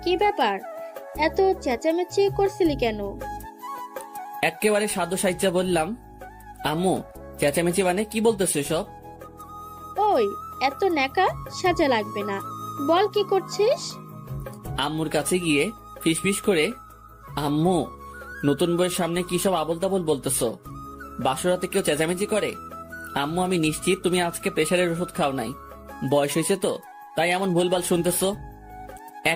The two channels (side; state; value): both; identical; correlation 1.00